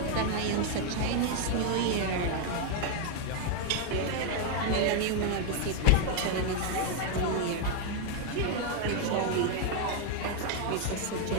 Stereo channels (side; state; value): both; different; correlation 0.01